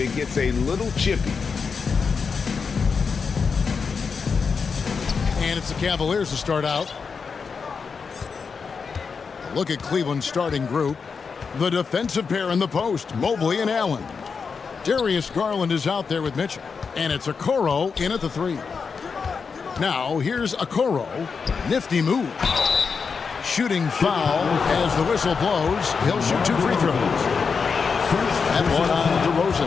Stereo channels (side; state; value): right; quieter; 5.5 dB